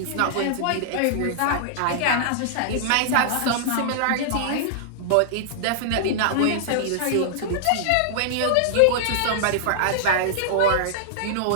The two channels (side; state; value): both; different; correlation -0.01